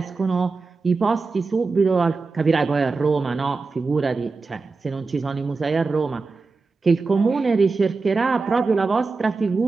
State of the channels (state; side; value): quieter; left; 4.1 dB